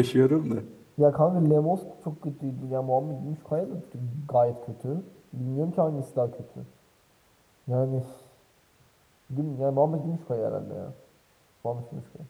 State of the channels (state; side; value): identical; both; correlation 1.00